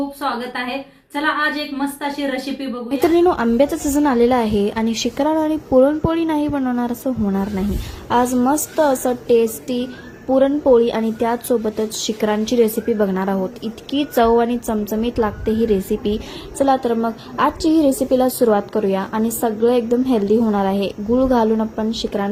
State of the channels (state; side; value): identical; both; correlation 1.00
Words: स्वागत आहे। चला आज एक मस्त अशी रेसिपी बघू। मित्रांनो, आंब्याचा सीझन आलेला आहे आणि शिकरण आणि पुरणपोळी नाही बनवणार असं होणार नाही। आज मस्त असं टेस्टी पुरणपोळी आणि त्याचसोबतच शिकरांची रेसिपी बघणार आहोत। इतकी चव आणि चमचमीत लागते ही रेसिपी। चला तर मग आजची ही रेसिपीला सुरुवात करूया आणि सगळं एकदम हेल्दी होणार आहे। गूळ घालून आपण